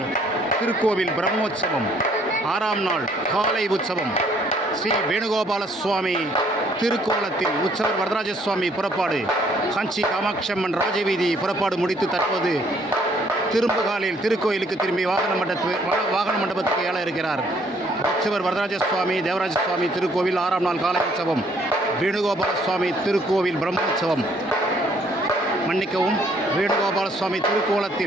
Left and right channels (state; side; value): normal; both; correlation 0.64